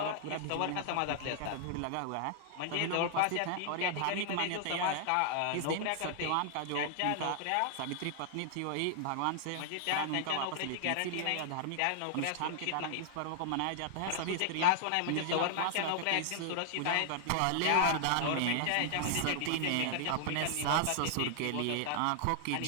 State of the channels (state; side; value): different; both; correlation -0.01